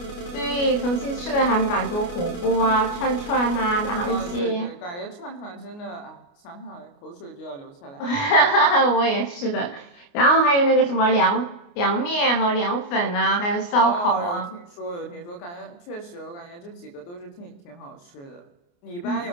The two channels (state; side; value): late; right; 29 ms